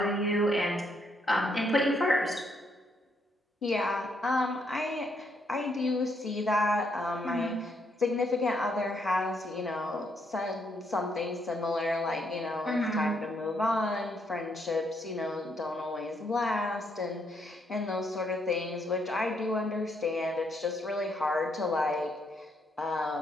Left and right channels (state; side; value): normal; both; correlation 0.74